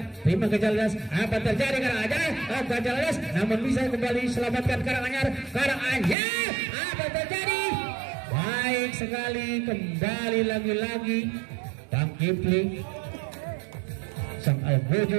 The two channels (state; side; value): drops out; left; at 6.2 s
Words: Terima Gajah Ladas. Apa terjadi Karanganyar? Gajah Ladas namun bisa kembali selamatkan Karanganyar. Karanganyar. Apa terjadi? Baik sekali, kembali lagi-lagi Bang Kipli. Sang